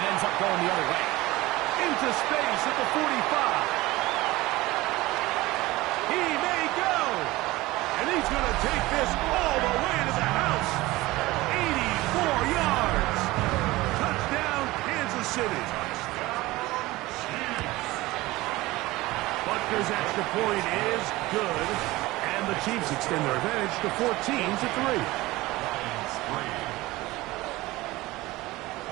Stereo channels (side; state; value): left; quieter; 19.4 dB